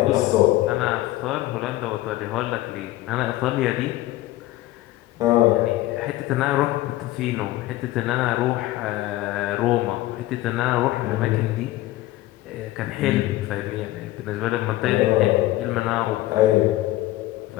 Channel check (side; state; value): right; quieter; 16.5 dB